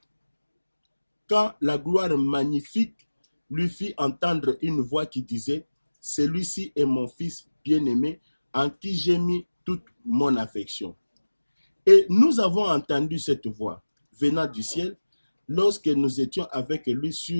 quand la gloire magnifique lui fit entendre une voix qui disait « Celui-ci est mon fils bien-aimé, en qui j'ai mis toute mon affection. » Et nous avons entendu cette voix venant du ciel lorsque nous étions avec lui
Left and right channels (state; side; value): inverted; both; correlation -1.00